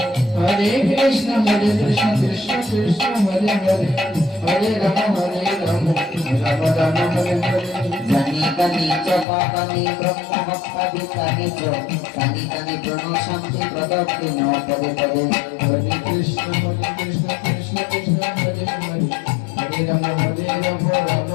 হরে কৃষ্ণ কৃষ্ণ কৃষ্ণ হরে হরে হরে রাম রাম রাম হরে হরে জানি কানি চপা কানি ব্রহ্ম হত্যাদি কানি কানি কানি ব্রহ্ম শান্তি প্রদত্তি ন পদে পদে হরে কৃষ্ণ কৃষ্ণ কৃষ্ণ হরে হরে হরে রাম রাম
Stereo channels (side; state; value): right; drops out; at 9.2 s